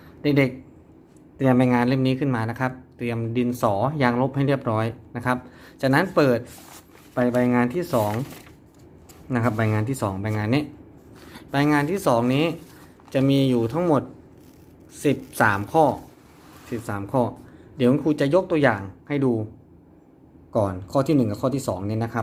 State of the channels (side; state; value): both; identical; correlation 1.00